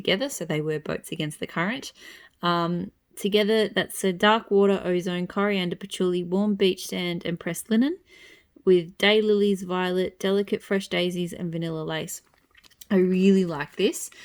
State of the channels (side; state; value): both; identical; correlation 1.00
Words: so they were boats against the current. Together, that's a dark water, ozone, coriander, patchouli, warm beach sand, and pressed linen, with daylilies, violet, delicate fresh daisies, and vanilla lace. I really like this.